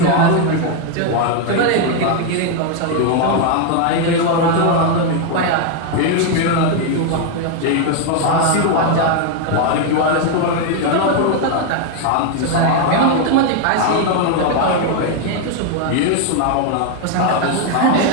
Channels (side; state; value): both; different; correlation 0.01